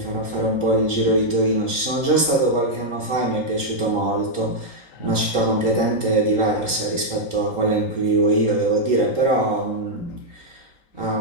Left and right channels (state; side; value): late; right; 3.8 ms